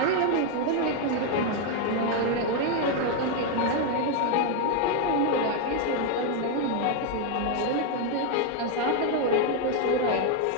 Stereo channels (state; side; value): different; both; correlation 0.01